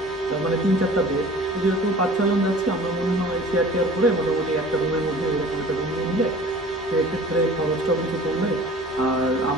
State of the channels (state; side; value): normal; both; correlation 0.45